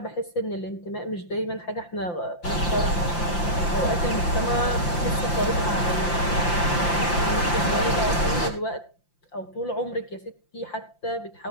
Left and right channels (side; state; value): right; late; 5.8 ms